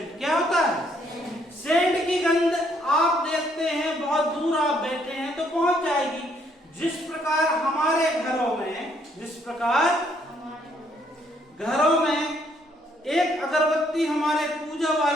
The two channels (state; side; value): normal; both; correlation 0.69